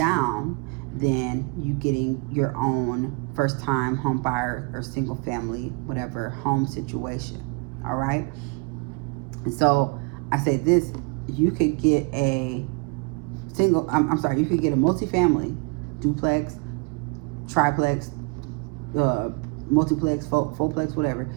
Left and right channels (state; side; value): quieter; left; 30.1 dB